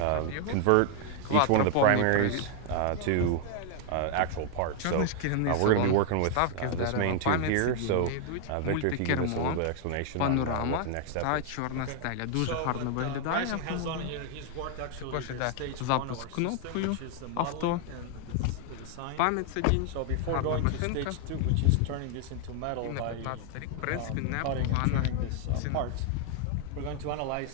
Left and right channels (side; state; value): both; different; correlation 0.00